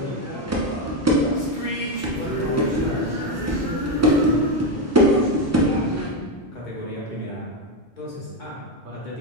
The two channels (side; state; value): both; normal; correlation 0.08